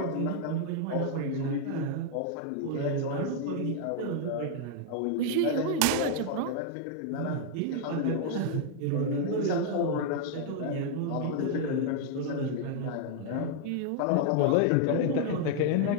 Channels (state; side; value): different; both; correlation 0.00